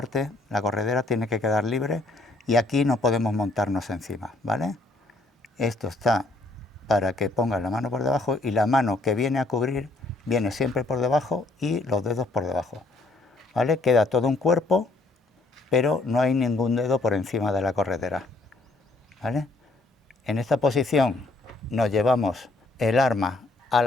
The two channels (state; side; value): quieter; right; 3.1 dB